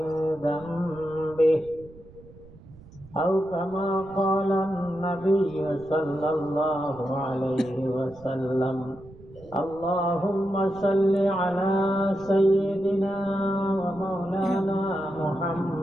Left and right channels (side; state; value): right; noise; rumble, 21 dB below the sound